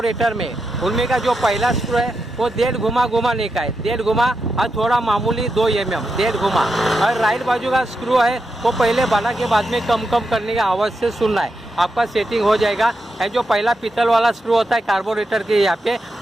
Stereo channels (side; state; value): both; normal; correlation 0.86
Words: में, उनमें का जो पहला स्क्रू है वो 1.5 घुमाने का है, 1.5 घुमा और थोड़ा मामूली 2 mm 1.5 घुमा। और राइट बाजू का स्क्रू है वो पहले बढ़ा के बाद में कम करने का आवाज़ से सुनना है, आपका सेटिंग हो जाएगा। और जो पहला पीतल वाला स्क्रू होता है कार्बोरेटर के यहाँ पे,